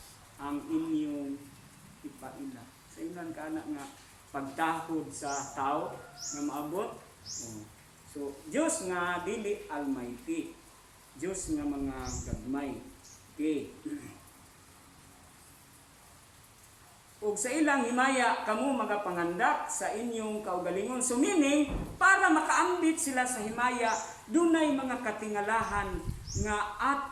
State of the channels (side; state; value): both; identical; correlation 1.00